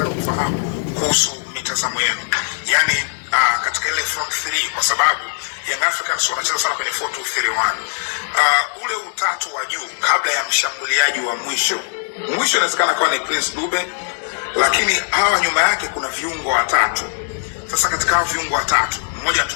kufahamu kuhusu mitazamo yenu, yani katika ile front 3, kwa sababu Young Africans wanacheza sana kwenye 4-2-3-1. Ule utatu wa juu kabla ya mshambuliaji wa mwisho inawezekana kuwa ni Prince Dube, lakini hawa nyuma yake kuna viungo watatu. Sasa katika hao viungo watatu, mmoja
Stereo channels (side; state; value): right; silent; digital silence